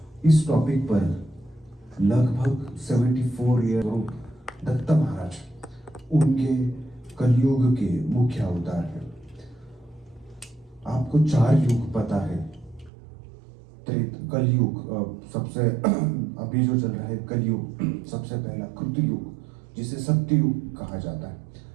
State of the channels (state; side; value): drops out; left; at 12.9 s